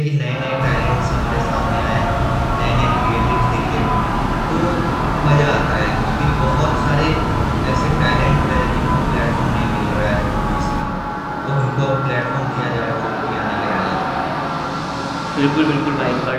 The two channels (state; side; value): identical; both; correlation 1.00